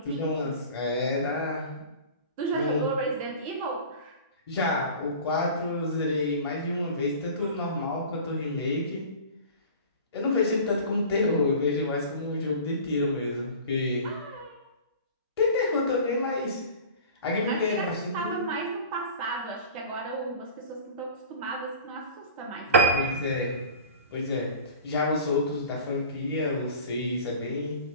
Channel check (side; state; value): both; inverted; correlation -0.39